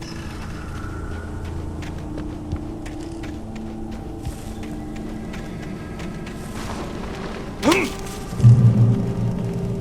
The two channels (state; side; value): identical; both; correlation 1.00